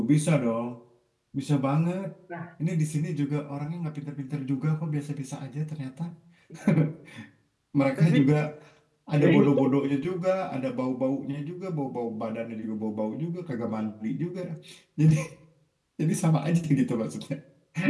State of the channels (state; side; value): identical; both; correlation 1.00